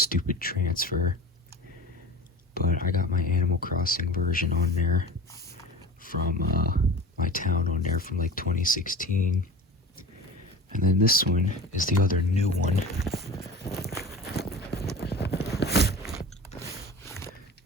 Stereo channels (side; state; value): both; normal; correlation 0.35